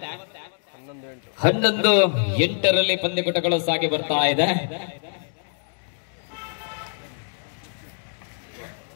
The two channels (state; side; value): silent; right; digital silence